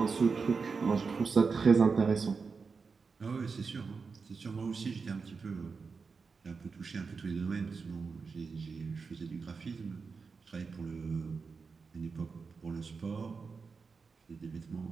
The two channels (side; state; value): left; quieter; 5.0 dB